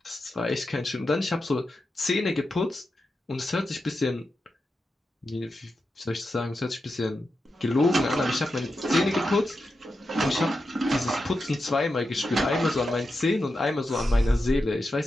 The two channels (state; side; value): normal; both; correlation 0.89